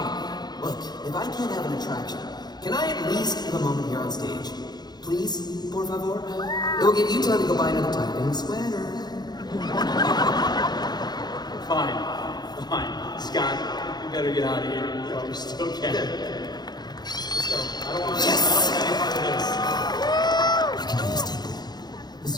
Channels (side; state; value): right; late; 0.20 ms